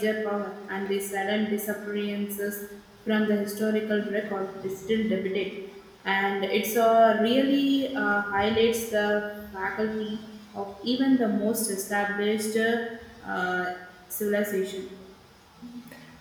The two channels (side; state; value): both; identical; correlation 1.00